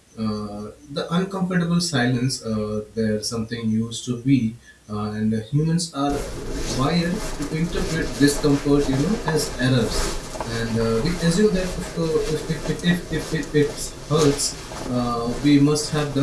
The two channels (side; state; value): both; identical; correlation 1.00